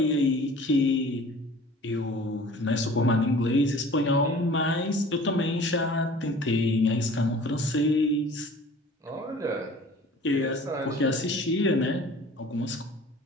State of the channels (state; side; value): normal; both; correlation 0.46